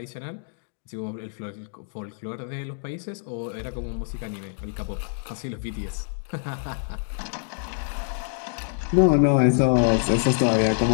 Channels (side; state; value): right; silent; digital silence